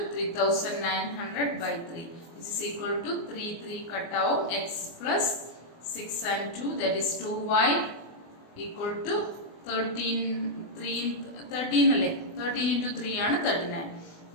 3,900 by 3, which is equal to 3 cut out x plus 6 and 2, that is 2y equal to 13 അല്ലേ? 13 into 3 ആണ് 39,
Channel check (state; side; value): late; right; 24 ms